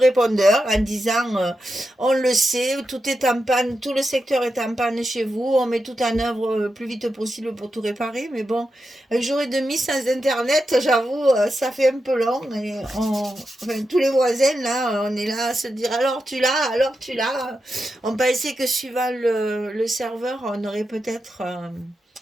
en disant on le sait, tout est en panne, tout le secteur est en panne chez vous, on met tout en œuvre le plus vite possible pour tout réparer, mais bon. Un jour et demi sans internet, j'avoue, ça fait un peu long. Et enfin, tous les voisins, là, on est là à se dire alors tu l'as, alors tu l'as. On pensait que suivant le serveur, on aurait peut-être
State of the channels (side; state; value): both; normal; correlation 0.88